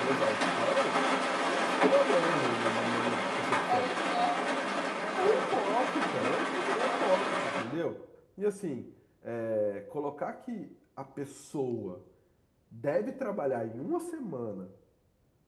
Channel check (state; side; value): identical; both; correlation 1.00